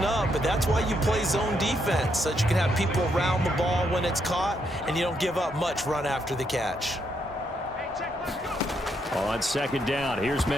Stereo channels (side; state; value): both; normal; correlation 0.77